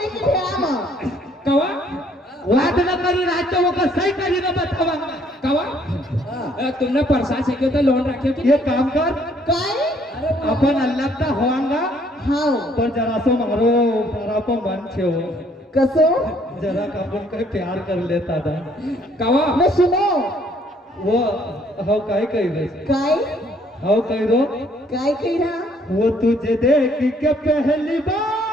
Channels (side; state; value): both; normal; correlation 0.64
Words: की भेड़ा में कवा वाद न करी रात वो का सही करी न बतावा कवा तुमने प्रसाद से तो लोन रखे थे ये काम कर काय अपन अल्लाह का होवांगा हाव पण जरासो मारो जरा मन छेव कसो जरा आपण काही प्यार कर लेता था कवा मैं सुनो वो हाउ काय कही रे काय हाउ कही रो काय कही रहा वो तुझे देख के पहली